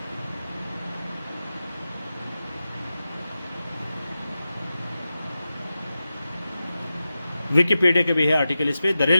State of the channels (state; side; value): inverted; both; correlation -0.92